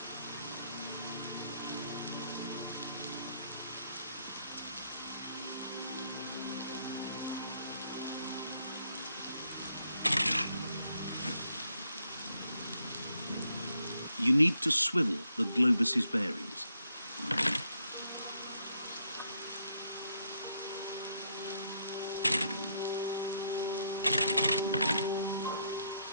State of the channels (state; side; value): inverted; both; correlation -0.75